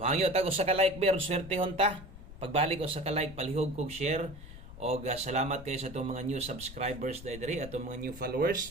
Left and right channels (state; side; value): noise; left; rumble, 14 dB below the sound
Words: tag usa ka like ber swertehon ta. Pagbalik usa ka like palihog kog share og salamat kayo sa itong mga new subscribers diri atong mga new